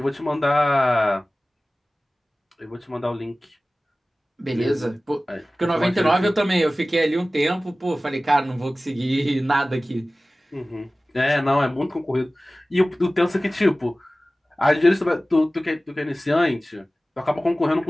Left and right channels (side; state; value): both; normal; correlation 0.97